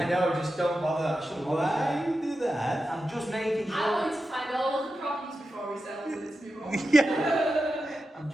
know, just don't bother. I shouldn't bother. Why you do that? I'm just making sure. I want to find all of the problems before we settle this move on. Yeah. I'm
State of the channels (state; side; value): normal; both; correlation 0.90